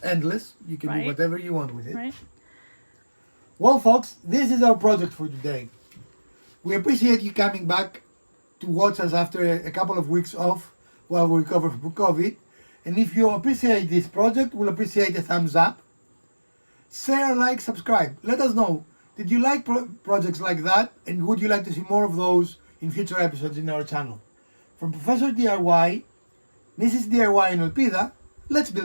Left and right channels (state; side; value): inverted; both; correlation -1.00